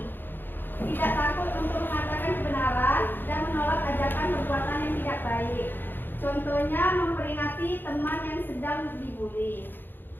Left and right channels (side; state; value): right; late; 0.095 ms